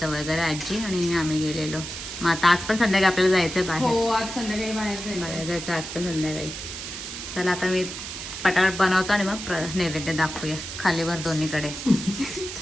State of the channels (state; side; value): noise; right; hiss, 8 dB below the sound